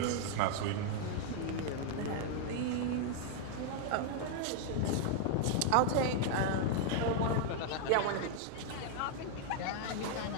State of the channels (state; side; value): different; both; correlation 0.00